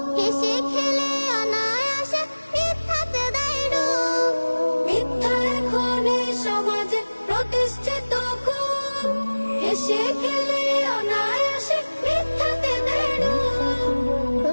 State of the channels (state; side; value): inverted; both; correlation -1.00